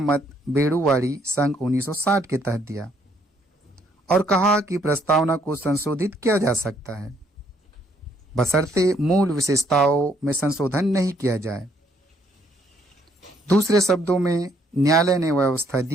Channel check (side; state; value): both; normal; correlation 0.68